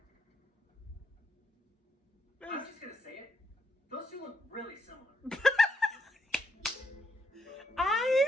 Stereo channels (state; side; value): normal; both; correlation 0.77